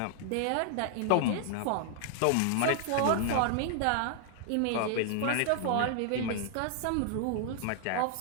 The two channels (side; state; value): both; different; correlation 0.00